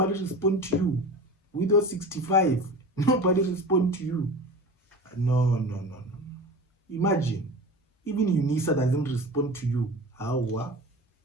responds to you. With your 65, nobody responds to you. No. Imagine, even UNISA doesn't respond to you. How?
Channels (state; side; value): normal; both; correlation 0.33